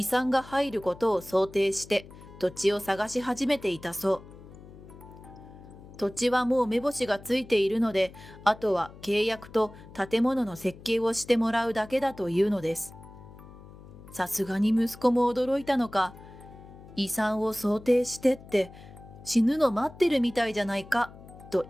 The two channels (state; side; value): noise; left; hum, 19 dB below the sound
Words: 産が入ることを想定して土地を探し始めていたそう。土地はもう目星がついているので、あとは契約と建物の設計をしてもらうだけだというのです。さすがに息子も驚いたのか、遺産を想定してって死ぬの待ってるみたいじゃないかと